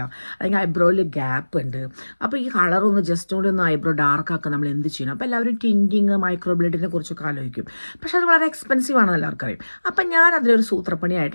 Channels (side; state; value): both; inverted; correlation -1.00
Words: അല്ലെങ്കിൽ ഐബ്രോയിൽ ഗ്യാപ്പ് ഉണ്ട്. അപ്പോൾ ഈ കളറൊന്ന് ജസ്റ്റ് കൂടി ഒന്ന് ഐബ്രോ ഡാർക്കാക്കാൻ നമ്മൾ എന്ത് ചെയ്യണം? അപ്പോൾ എല്ലാവരും ടിൻറ്റിങ്, മൈക്രോബ്ലേഡിനെ കുറിച്ചൊക്കെ ആലോചിക്കും. പക്ഷേ അത് വളരെ എക്സ്പെൻസീവ് ആണെന്ന് എല്ലാവർക്കും അറിയും. അപ്പം ഞാൻ അതിലൊരു